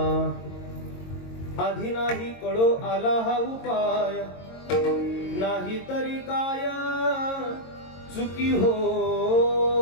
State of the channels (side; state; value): right; late; 22 ms